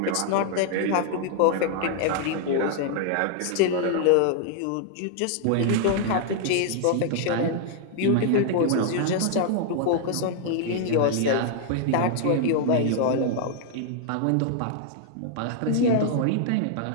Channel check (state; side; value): different; both; correlation -0.01